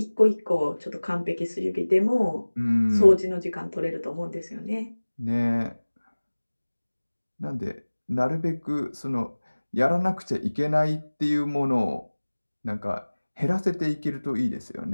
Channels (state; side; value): inverted; both; correlation -1.00